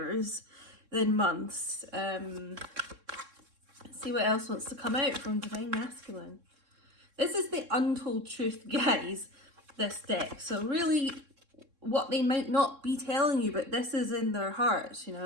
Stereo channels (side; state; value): left; late; 3.7 ms